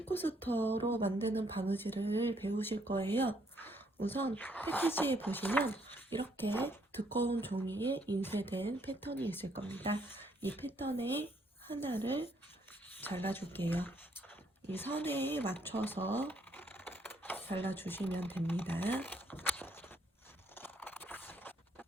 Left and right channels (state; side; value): normal; both; correlation 0.69